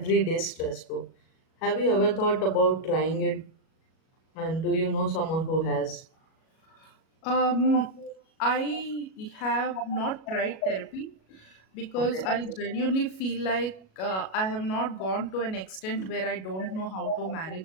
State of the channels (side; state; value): right; late; 37 ms